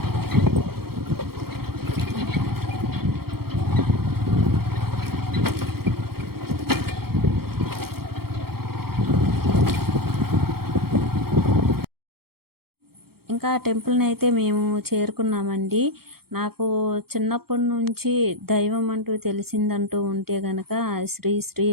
ఇంకా టెంపుల్ని అయితే మేము చేరుకున్నామండి. నాకు చిన్నప్పటి నుంచి దైవం అంటూ తెలిసిందంటూ ఉంటే గనక శ్రీ శ్రీ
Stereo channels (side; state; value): left; late; 0.94 ms